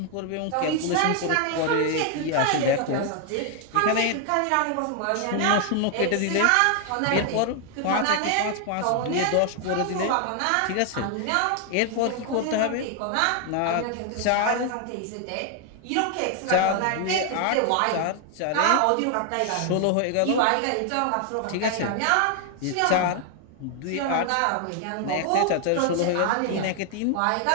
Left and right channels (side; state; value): both; different; correlation 0.00